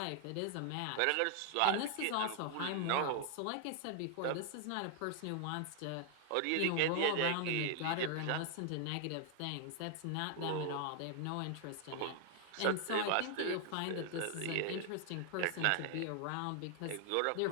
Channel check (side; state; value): both; different; correlation 0.00